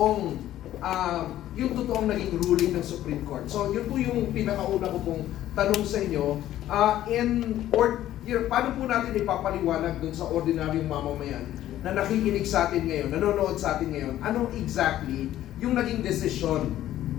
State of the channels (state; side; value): quieter; right; 13.1 dB